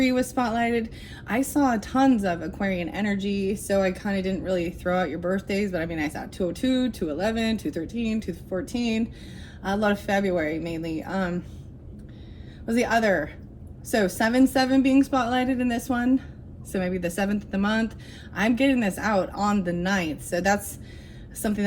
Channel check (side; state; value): both; identical; correlation 1.00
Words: was spotlighted. I saw tons of Aquarian energy, so I kind of didn't really throw out your birthdays, but I mean, I saw 202, 211, 213, 214, a lot of February mainly. Was the other? So 7-7 being spotlighted in this one. So maybe the 7th of the month. I'm getting this out on the 9th. So that's something